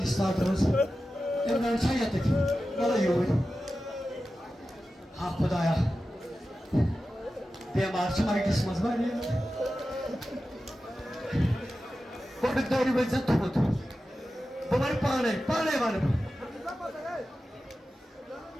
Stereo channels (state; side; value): normal; both; correlation 0.93